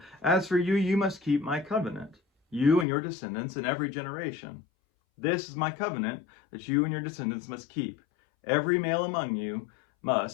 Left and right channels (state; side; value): drops out; right; at 2.9 s